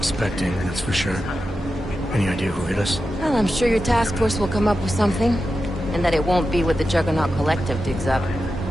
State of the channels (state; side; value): normal; both; correlation 0.91